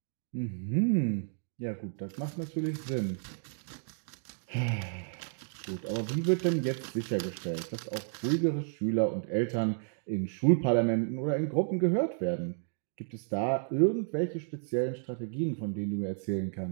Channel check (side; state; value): left; silent; digital silence